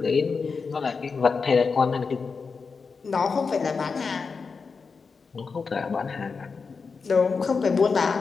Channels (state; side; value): quieter; right; 5.0 dB